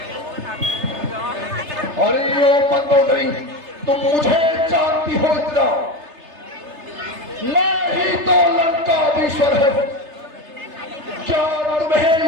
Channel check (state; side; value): late; left; 3.3 ms